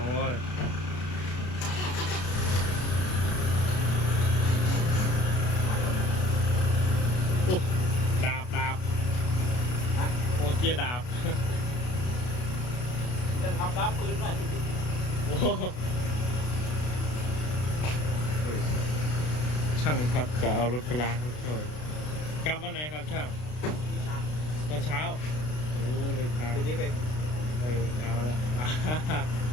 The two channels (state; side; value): late; right; 33 ms